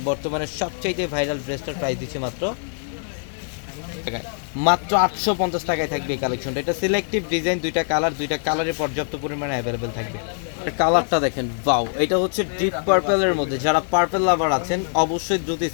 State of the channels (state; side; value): silent; right; 62 dB below the other